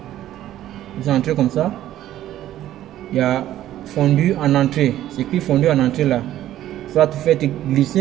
Vous entrez comme ça. Il y a fondu en entrée, c'est écrit fondu en entrée là. Soit vous faites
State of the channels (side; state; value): left; quieter; 13.0 dB